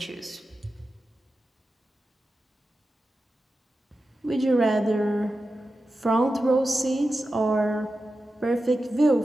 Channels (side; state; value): both; normal; correlation 0.92